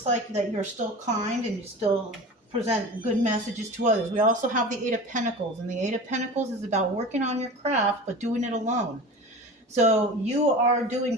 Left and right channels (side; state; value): both; normal; correlation 0.34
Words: like that you're still kind and you still present good messages to others. We also have the Eight of Pentacles, and the Eight of Pentacles is about working on your craft, but doing it alone. So you are doing